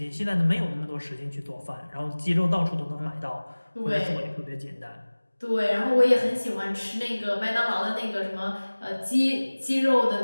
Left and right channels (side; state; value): both; inverted; correlation -1.00